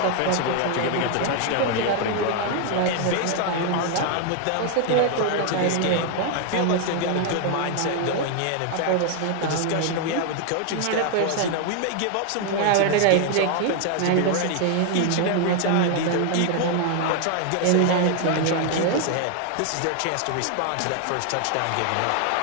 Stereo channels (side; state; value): both; different; correlation 0.00